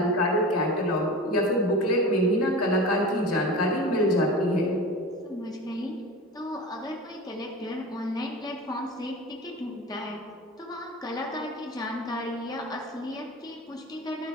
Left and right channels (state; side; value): normal; both; correlation 0.32